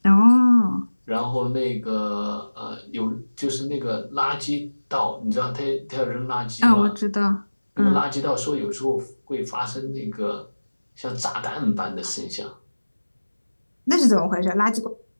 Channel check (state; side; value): inverted; both; correlation -1.00